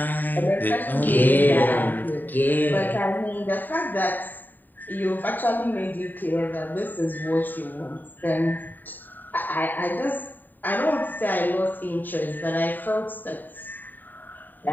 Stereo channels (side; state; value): right; late; 0.089 ms